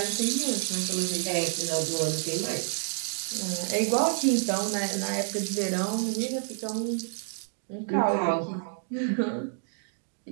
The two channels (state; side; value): silent; left; 59 dB below the other